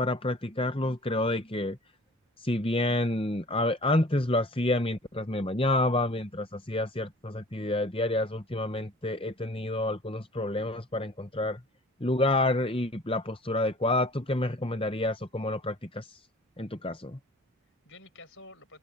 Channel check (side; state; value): both; normal; correlation 0.48